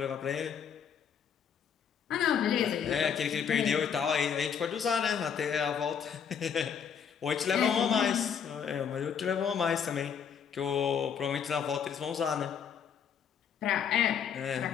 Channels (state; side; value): quieter; right; 7.5 dB